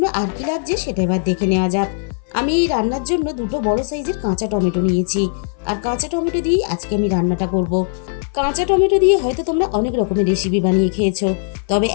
আর কি লাগছে সেটা এবার দেখে নেওয়া যাক। আমি এই রান্নার জন্য 2টো বড় সাইজের কাঁচা টমেটো নিয়েছি। আর কাঁচা টমেটো দিয়ে আজকে আমি রান্নাটা করব। কাঁচা টমেটো দিয়ে হয়তো তোমরা অনেক রকমের রেসিপি বানিয়ে খেয়েছো, তবে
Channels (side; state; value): right; silent; 58 dB below the other